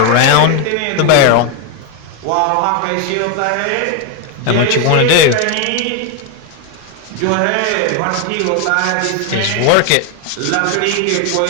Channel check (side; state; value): both; different; correlation 0.01